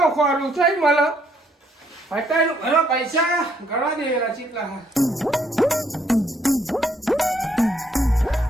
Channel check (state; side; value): normal; both; correlation 0.69